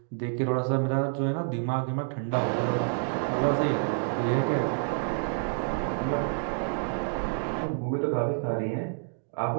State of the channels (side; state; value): left; silent; digital silence